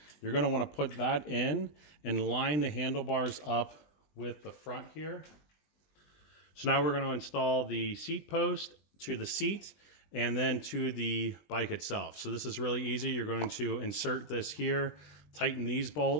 You're going to want to put that in and line the handlebars up with the front here. So now we're going to install the seat post to the seat and then to the bike itself. So this is really easy. You're going to insert this here, tighten these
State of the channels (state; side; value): late; right; 20 ms